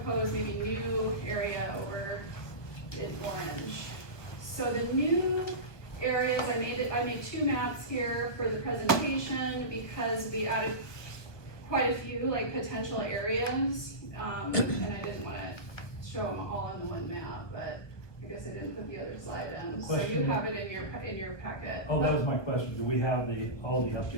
maybe new area over in orange. So the new areas, I made two maps here for the presentation because we added quite a few like potential areas, and I didn't want to show them all in the one map, but I guess I didn't put the other slide in. So you have it in your packet. Oh, that was my question. Do we have all the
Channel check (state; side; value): late; right; 1.2 ms